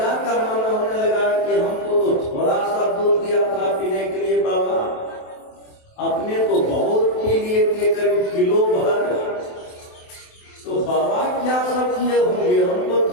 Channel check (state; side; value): late; right; 27 ms